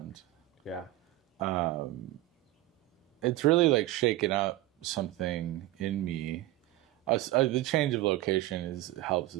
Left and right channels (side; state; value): left; quieter; 16.7 dB